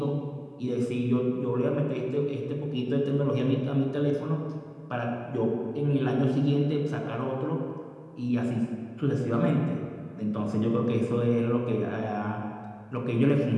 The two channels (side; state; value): both; identical; correlation 1.00